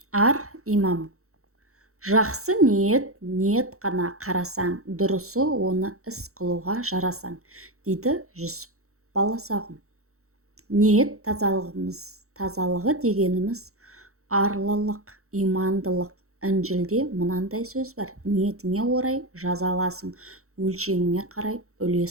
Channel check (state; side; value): late; left; 0.64 ms